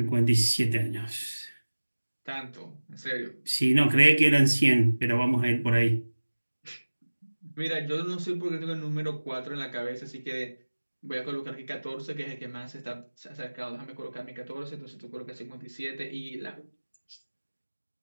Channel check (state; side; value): inverted; both; correlation -1.00